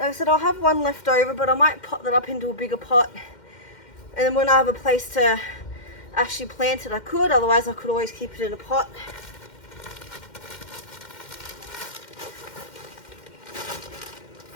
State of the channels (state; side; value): late; right; 2.1 ms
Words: I said, I'll have one left over, but I might pot that up into a bigger pot. And then when I have a place to actually plant it, I could. Otherwise, I could always keep it in a pot.